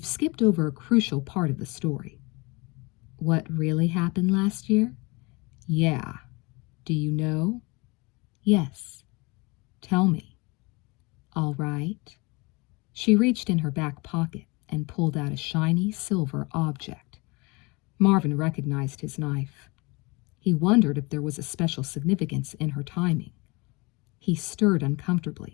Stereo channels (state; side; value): quieter; right; 26.6 dB